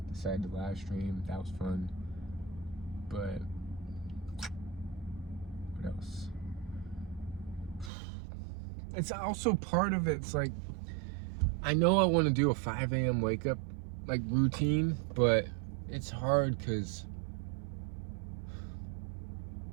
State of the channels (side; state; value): left; drops out; at 7.9 s